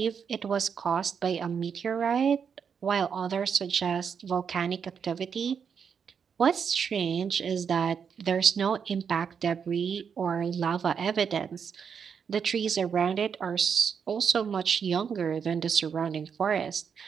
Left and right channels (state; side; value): quieter; left; 6.8 dB